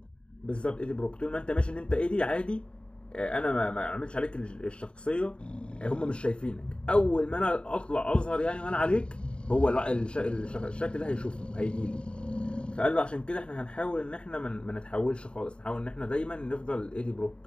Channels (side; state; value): right; late; 0.054 ms